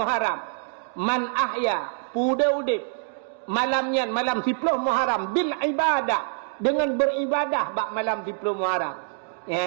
Man ahya udip malamnya malam 10 Muharram bil ibadah, dengan beribadah bak malam 10 Muharram.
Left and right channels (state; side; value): silent; left; digital silence